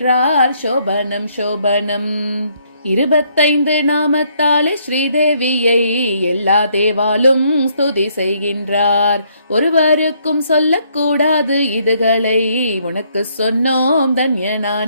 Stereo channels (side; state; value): both; inverted; correlation -0.69